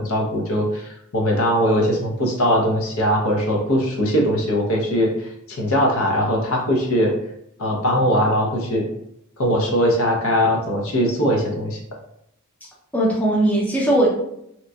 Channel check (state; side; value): normal; both; correlation 0.30